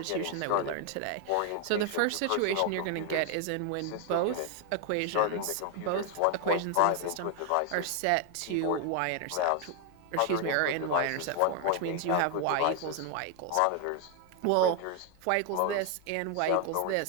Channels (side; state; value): both; different; correlation 0.00